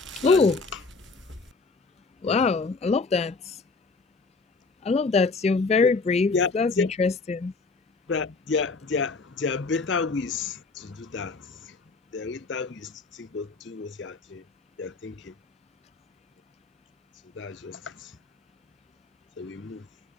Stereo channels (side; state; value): right; quieter; 4.0 dB